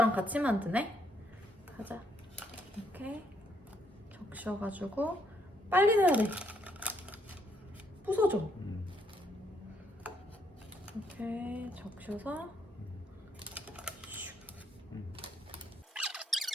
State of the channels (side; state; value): both; normal; correlation 0.72